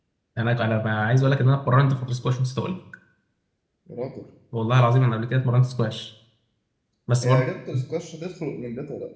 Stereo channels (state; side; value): identical; both; correlation 1.00